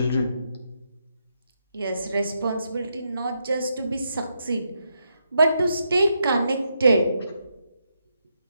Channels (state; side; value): inverted; both; correlation -0.81